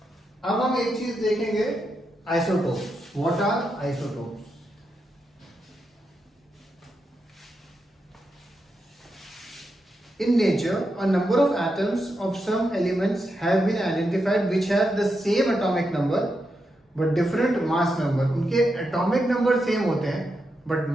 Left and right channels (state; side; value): normal; both; correlation 0.85